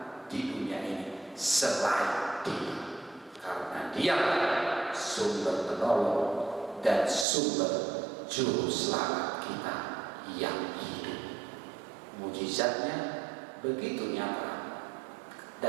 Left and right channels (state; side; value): drops out; left; at 7.2 s